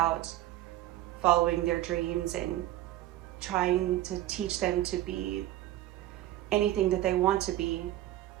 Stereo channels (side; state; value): left; quieter; 14.7 dB